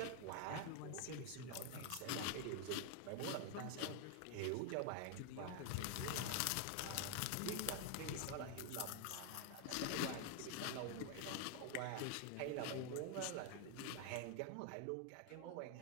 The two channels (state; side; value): different; both; correlation 0.01